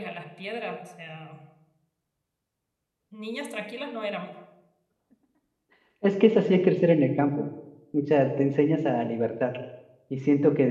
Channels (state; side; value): identical; both; correlation 1.00